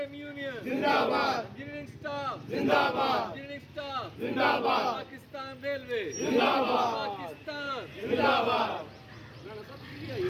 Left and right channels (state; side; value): identical; both; correlation 1.00